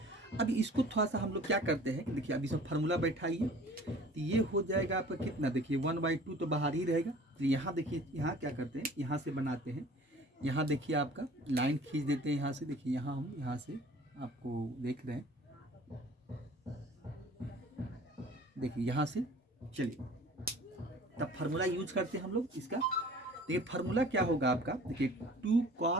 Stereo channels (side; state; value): both; normal; correlation 0.47